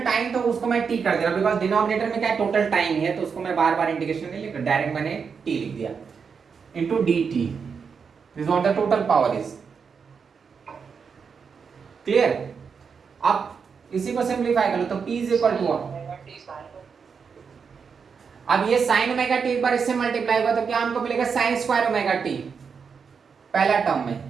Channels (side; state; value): left; quieter; 6.0 dB